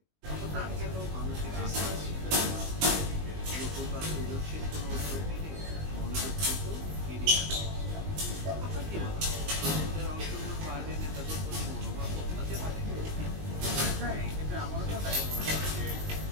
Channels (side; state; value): left; late; 20 ms